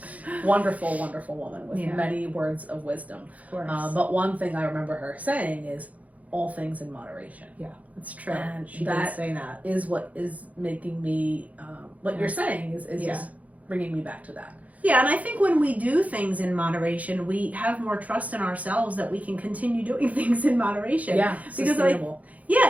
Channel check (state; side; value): late; left; 0.071 ms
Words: Wonderful, wonderful woman with many words of wisdom. Of course. But one thing I remember her saying is, all things in moderation. Yeah, that's true. And she did say that. Is what is making me, what you're saying is just bringing me back to that. Yeah, and I think when we do things in moderation, we have more trust in ourselves that we can continue doing things in moderation. Yeah, sustainable.